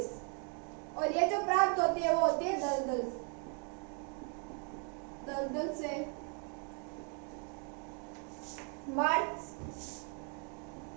और ये जो प्राप्त होती है वो होती है दलदल से मार्च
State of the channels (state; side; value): quieter; left; 39.0 dB